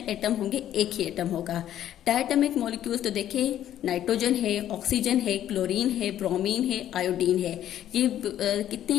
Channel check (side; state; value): right; quieter; 11.5 dB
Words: एटम होंगे, एक ही एटम होगा। डायटॉमिक मॉलिक्यूल्स तो देखिए नाइट्रोजन है, ऑक्सीजन है, क्लोरीन है, ब्रोमीन है, आयोडीन है। ये